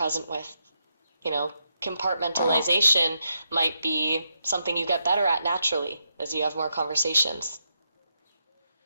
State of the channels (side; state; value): both; inverted; correlation -0.82